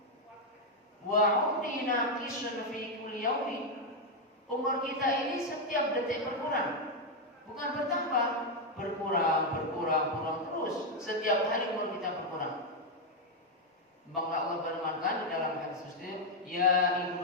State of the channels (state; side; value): normal; both; correlation 0.02